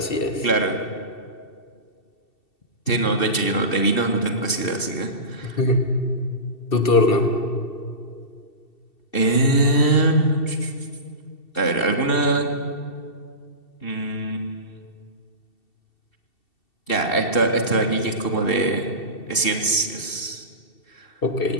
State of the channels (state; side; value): late; right; 2.7 ms